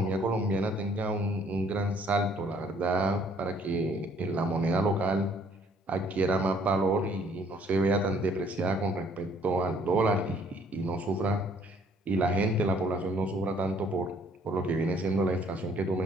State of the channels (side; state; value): both; normal; correlation 0.61